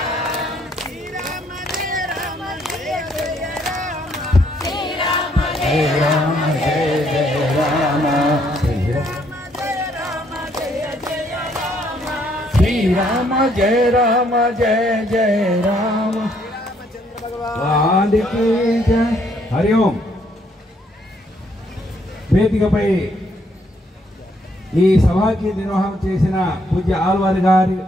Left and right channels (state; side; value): normal; both; correlation 0.69